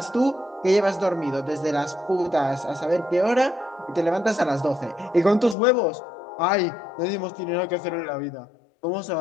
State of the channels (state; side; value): drops out; right; at 5.6 s